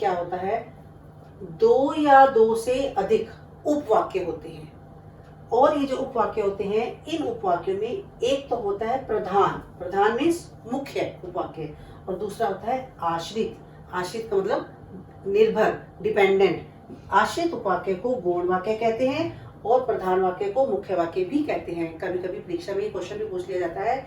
होता है? 2 या 2 से अधिक उपवाक्य होते हैं। और ये जो उपवाक्य होते हैं, इन उपवाक्यों में एक तो होता है प्रधान, प्रधान मीन्स मुख्य उपवाक्य, और दूसरा होता है आश्रित। आश्रित का मतलब निर्भर, डिपेंडेंट। आश्रित उपवाक्य को गौण वाक्य कहते हैं और प्रधान वाक्य को मुख्य वाक्य भी कहते हैं। कभी कभी परीक्षा में क्वेश्चन भी पूछ लिया जाता है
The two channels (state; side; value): identical; both; correlation 1.00